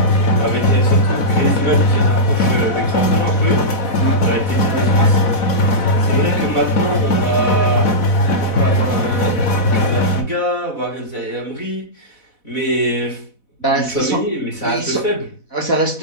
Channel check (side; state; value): right; late; 4.1 ms